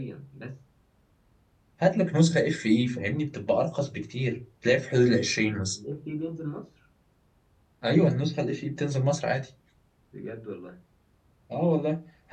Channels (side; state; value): both; identical; correlation 1.00